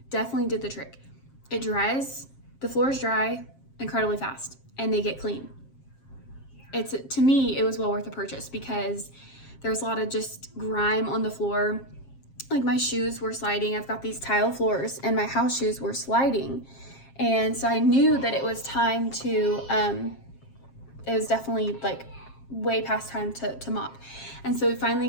definitely did the trick. It dries, the floors dry incredibly fast, and they get clean. To me, it was well worth the purchase because there was a lot of just grime on the floor. Like my shoes were sliding. I've got these tile floors, and my house shoes were sliding. And so I knew that it was time to, it was definitely like way past time to mop. And so we finally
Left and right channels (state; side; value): late; right; 7.5 ms